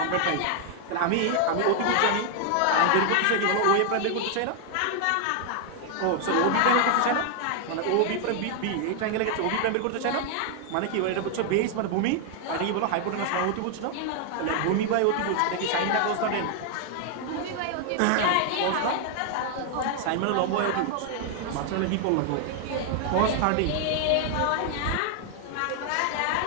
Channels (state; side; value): different; both; correlation 0.00